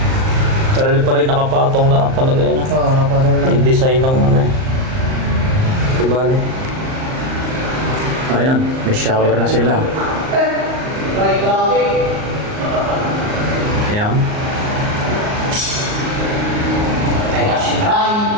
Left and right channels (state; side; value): late; left; 38 ms